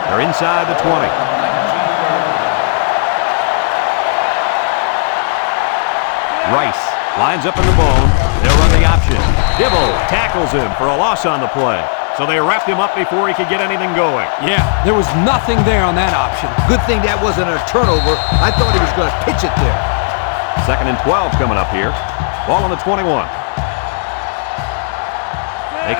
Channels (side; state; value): right; silent; digital silence